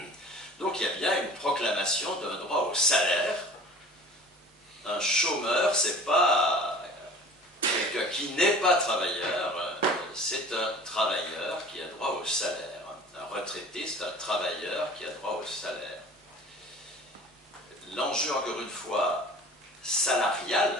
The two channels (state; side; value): normal; both; correlation 0.44